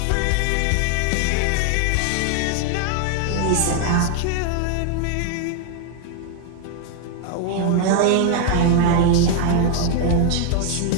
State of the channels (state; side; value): different; both; correlation 0.00